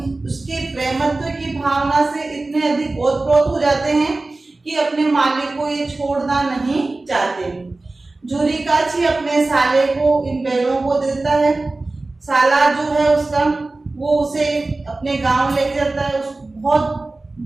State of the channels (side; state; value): left; quieter; 3.2 dB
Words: उसके प्रेमत्व की भावना से इतने अधिक ओतप्रोत हो जाते हैं कि अपने मालिक को ये छोड़ना नहीं चाहते। झूरी काछी अपने साले को इन बैलों को देता है। साला जो है उसका वो उसे अपने गांव लेके जाता है। उस बहुत